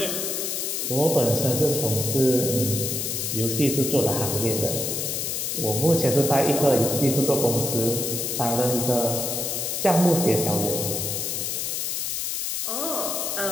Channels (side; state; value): left; noise; hiss, 2 dB below the sound